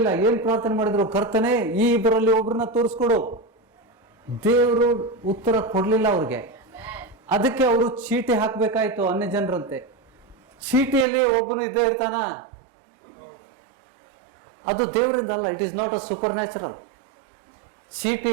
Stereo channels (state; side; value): drops out; left; at 11.1 s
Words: ಏನ್ ಪ್ರಾರ್ಥನೆ ಮಾಡಿದ್ರು? ಕರ್ತನೆ, ಈ ಇಬ್ಬರಲ್ಲಿ ಒಬ್ಬರನ್ನ ತೋರಿಸ್ಕೊಡು. ದೇವರು ಉತ್ತರ ಕೊಡ್ಲಿಲ್ಲ ಅವ್ರಿಗೆ. ಅದಕ್ಕೆ ಅವರು ಚೀಟಿ ಹಾಕ್ಬೇಕಾಯ್ತು ಅನ್ಯ ಜನರಂತೆ. ಚೀಟಿಯಲ್ಲಿ ಒಬ್ಬನು ಇದ್ದೇ ಇರ್ತಾನ? ಅದು ದೇವರಿಂದ ಅಲ್ಲ. It is not a supernatural.